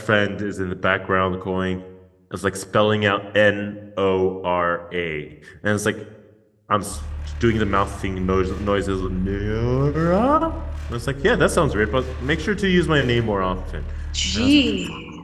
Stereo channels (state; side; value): identical; both; correlation 1.00